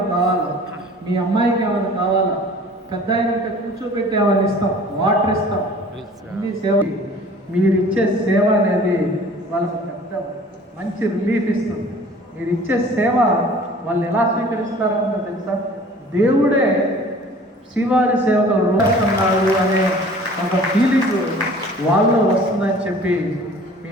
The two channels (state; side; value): normal; both; correlation 0.48